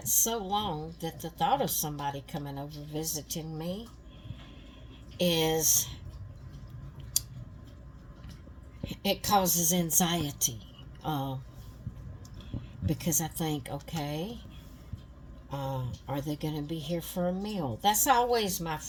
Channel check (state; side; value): identical; both; correlation 1.00